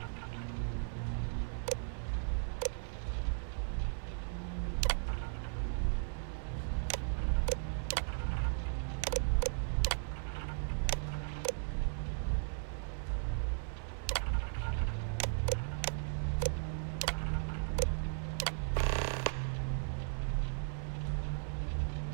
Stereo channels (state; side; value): silent; left; 53 dB below the other